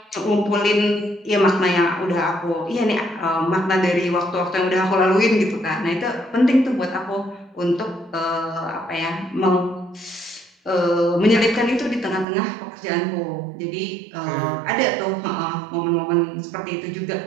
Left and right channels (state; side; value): drops out; left; at 12.2 s